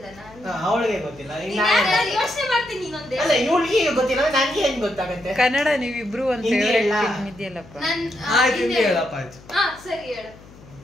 ನಾನು ಅವಳಿಗೆ ಗೊತ್ತಿಲ್ಲ. ಯೋಚನೆ ಮಾಡ್ತೀನಿ ಇನ್ನೊಂದೇ. ಅಲ್ಲ ಇವಳಿಗೆ ಗೊತ್ತಿಲ್ಲ, ನನಗೆ ಹೆಂಗ್ ಗೊತ್ತಾಗತ್ತೆ? ಕನ್ನಡ ನೀವಿಬ್ರು ಒಂದ್ ಹಿಂದಿ ಫೇವರೇಟ್ ಎಲ್ಲ? ಫಿಲ್ಮ್ ಇದೆಯಲ್ಲಪ್ಪ. ಹಿಂದಿ ಹೇಳಪ್ಪ ಆಯ್ತು. ಸರಿ ಹೇಳು.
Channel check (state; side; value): noise; left; hum, 22 dB below the sound